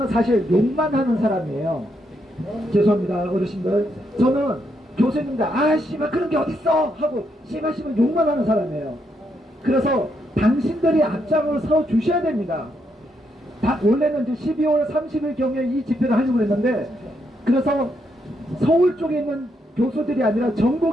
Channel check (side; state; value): both; normal; correlation 0.78